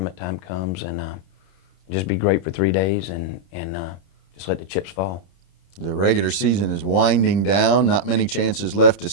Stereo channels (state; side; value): late; right; 30 ms